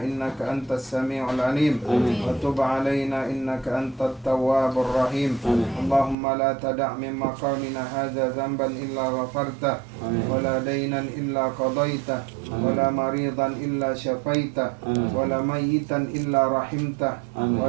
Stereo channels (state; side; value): drops out; left; at 6.2 s